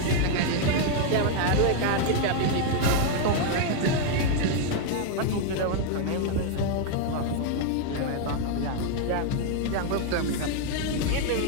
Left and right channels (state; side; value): different; both; correlation 0.00